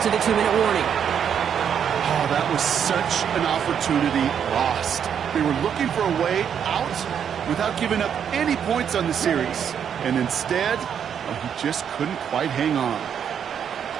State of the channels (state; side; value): quieter; left; 8.2 dB